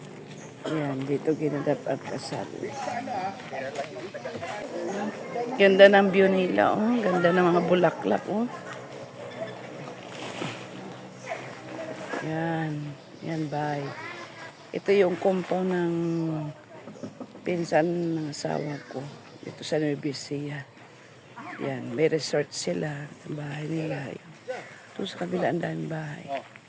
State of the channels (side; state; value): both; identical; correlation 1.00